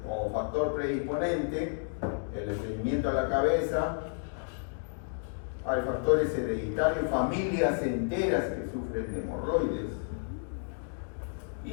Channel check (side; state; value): right; silent; digital silence